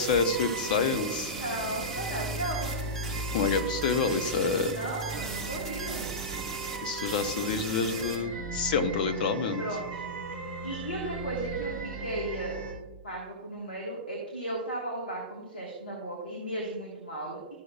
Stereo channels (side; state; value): both; normal; correlation -0.17